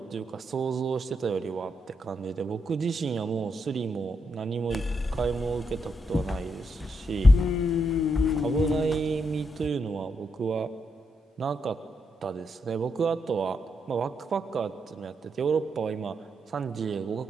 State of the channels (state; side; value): normal; both; correlation 0.81